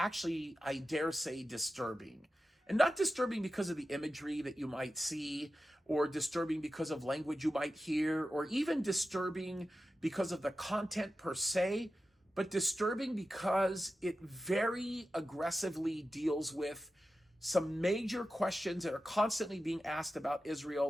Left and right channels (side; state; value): both; normal; correlation 0.92